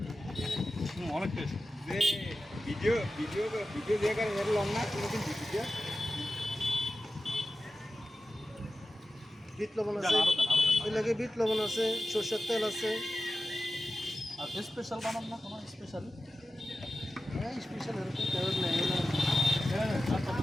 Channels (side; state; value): both; normal; correlation 0.94